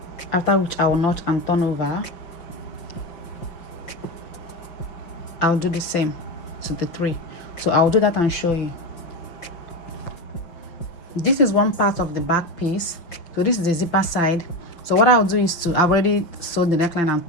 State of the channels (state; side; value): late; right; 5.8 ms